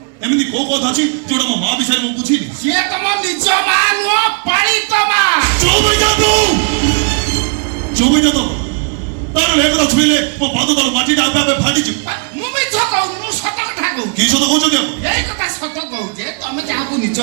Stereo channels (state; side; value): quieter; left; 39.2 dB